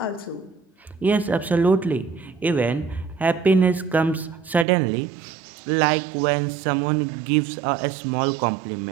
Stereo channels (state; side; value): drops out; left; at 4.7 s